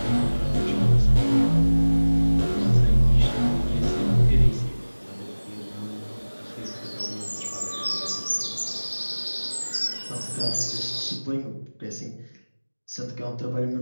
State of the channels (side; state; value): both; inverted; correlation -1.00